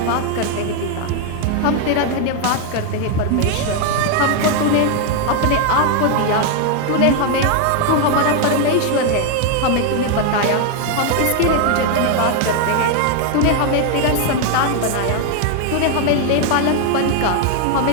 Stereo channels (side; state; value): both; different; correlation 0.01